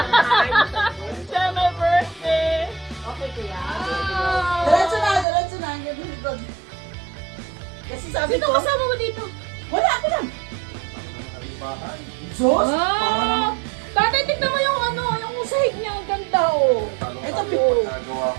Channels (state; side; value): drops out; left; at 5.2 s